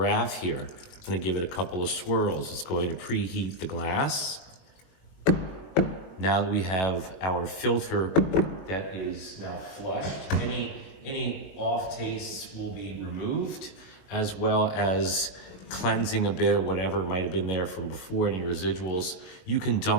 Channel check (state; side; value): late; right; 21 ms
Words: here. I'm going to give it a couple of swirls. It's going to preheat the glass. Now that we have our filter that is now flushed, any off tastes will be removed, as well as cleansing a bit of whatever might have been there from before, any residuals. You can